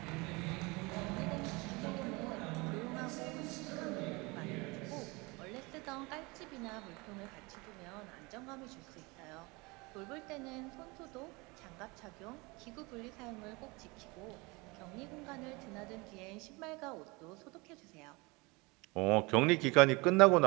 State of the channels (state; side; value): quieter; left; 25.8 dB